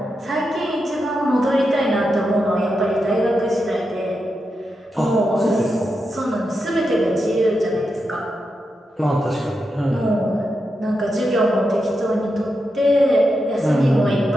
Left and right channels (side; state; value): both; normal; correlation 0.87